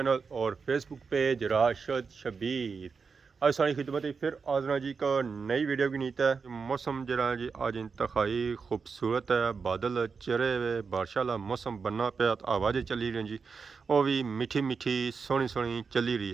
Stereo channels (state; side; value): quieter; left; 5.3 dB